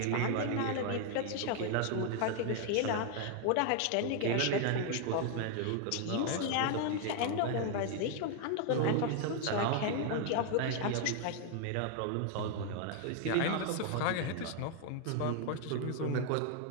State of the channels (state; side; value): different; both; correlation 0.00